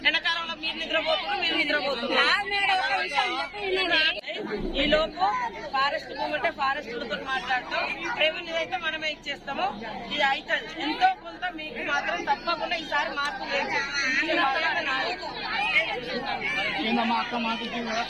ఎండాకాలంలో మీరు నిద్రపోతున్నారు మీరు నిద్రపోతున్నారు ఈ లోపు ఫారెస్ట్ భూమి అంటే ఫారెస్ట్లతో మాట్లాడతాం రెవెన్యూ అయితే మనమే ఇచ్చేస్తాము ఇది అయితే ఎంతో కొంత మీకు మాత్రం తప్పకుండా ఈసారి మార్పు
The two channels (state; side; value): identical; both; correlation 1.00